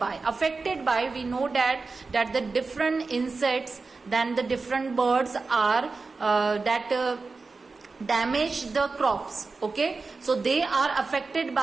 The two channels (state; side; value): quieter; left; 4.1 dB